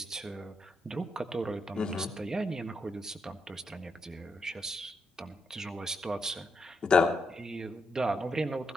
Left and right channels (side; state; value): both; normal; correlation 0.81